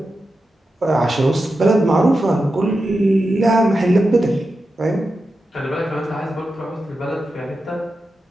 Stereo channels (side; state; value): both; normal; correlation 0.90